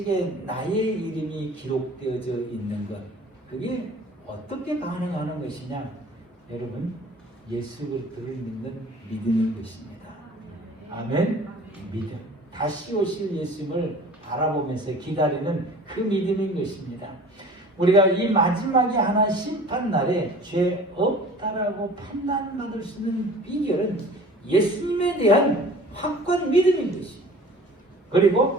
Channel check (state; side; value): normal; both; correlation 0.45